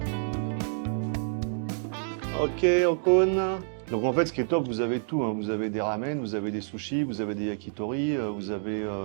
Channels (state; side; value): silent; left; digital silence